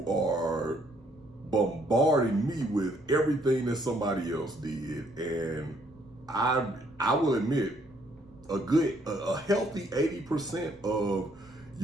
are bombarding me with everything that somebody else did, and I will admit a healthy 80% of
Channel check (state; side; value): noise; right; rumble, 29 dB below the sound